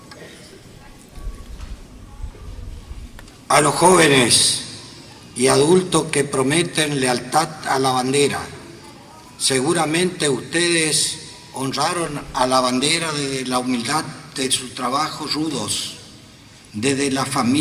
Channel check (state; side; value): identical; both; correlation 1.00